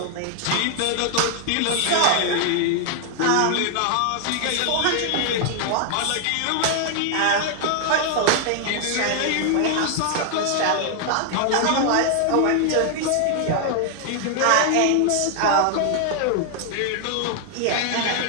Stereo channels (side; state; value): both; different; correlation 0.00